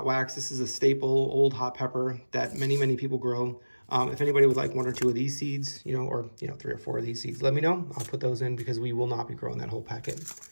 wax. This is a staple old hot pepper that many people grow. If anybody would like 1 or 2 of these seeds, or 3 or 4 of these seeds, let me know. I'll put those in because we will not be growing that whole packet.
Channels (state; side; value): inverted; both; correlation -1.00